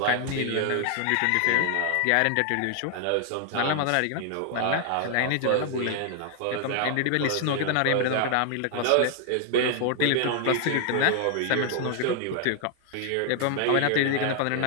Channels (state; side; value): different; both; correlation 0.00